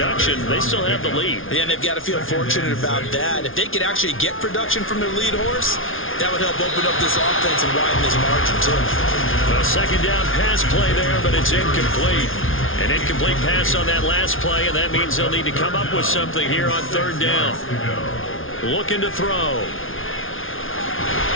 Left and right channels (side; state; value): right; late; 0.58 ms